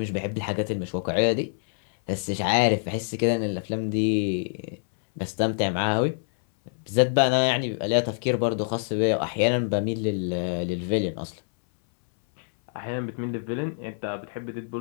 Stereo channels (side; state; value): right; silent; 61 dB below the other